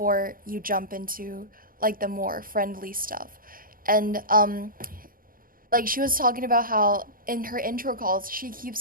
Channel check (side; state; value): left; late; 0.41 ms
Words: you jump into like the more friendly stuff. And like, she was talking about how in her intro calls she